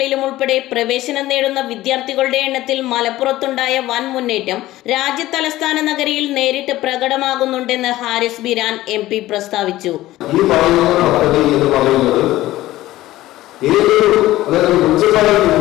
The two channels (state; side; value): quieter; right; 16.1 dB